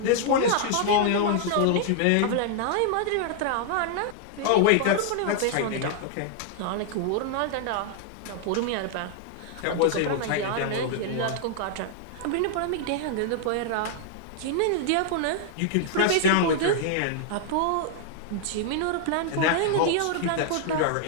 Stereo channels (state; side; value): different; both; correlation -0.01